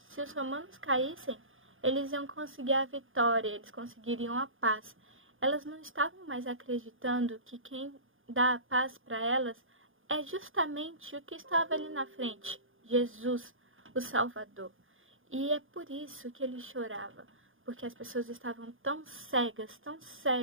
os romanos caíssem, eles iam conseguir a vitória, eles conseguiriam a paz. Elas não estavam mais acreditando que quem dá a paz para elas é justamente o que estava ali na frente, Jesus, o Salvador. E é por isso que ele chorava, porque as pessoas estavam tão cegas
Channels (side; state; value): left; late; 0.59 ms